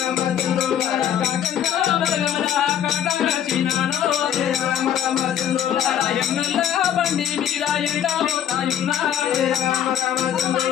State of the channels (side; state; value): right; quieter; 9.9 dB